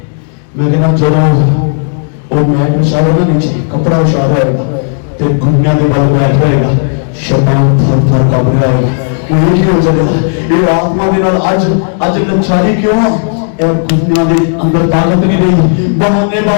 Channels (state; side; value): silent; right; 65 dB below the other